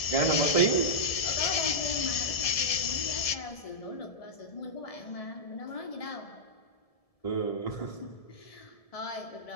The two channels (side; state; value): right; late; 1.7 ms